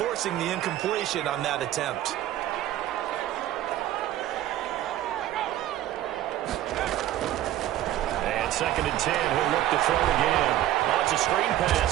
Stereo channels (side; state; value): left; quieter; 13.4 dB